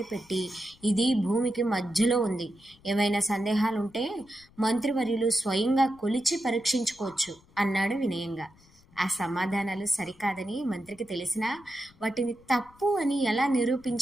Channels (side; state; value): left; noise; rumble, 28 dB below the sound